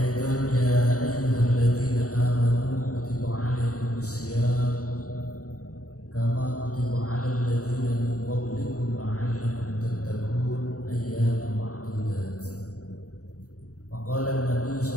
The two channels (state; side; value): late; right; 0.66 ms